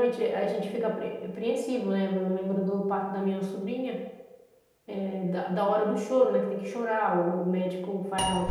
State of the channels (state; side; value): identical; both; correlation 1.00